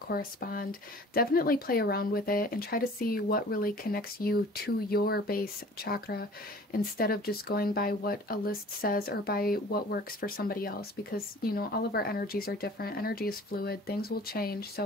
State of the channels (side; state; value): both; normal; correlation 0.46